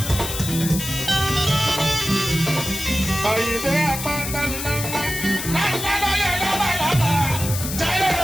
Àyìndé apáta ńláńlá ńláńlá lóye lọ́bàlọ́bà jáyé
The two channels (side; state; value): left; noise; hiss, 6 dB below the sound